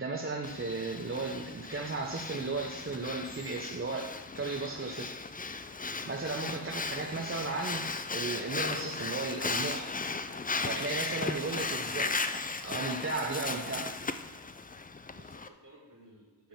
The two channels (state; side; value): normal; both; correlation 0.02